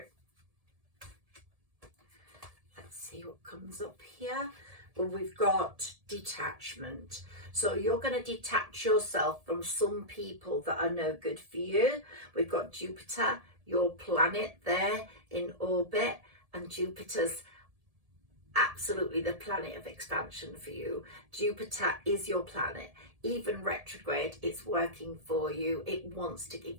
Let's see what comes up here. Well, we've got detachment. So you're going to detach yourself from some people that are no good for you. We've got Jupiter, your planet there in orbit, and Jupiter's absolutely the planet of expansion for you. Jupiter is your planet. Even retrograde, it's working for you. It wants to give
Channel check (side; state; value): left; late; 1.7 ms